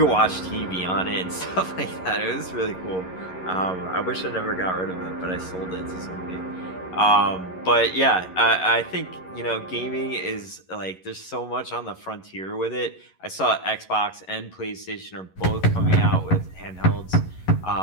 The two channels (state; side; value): late; right; 11 ms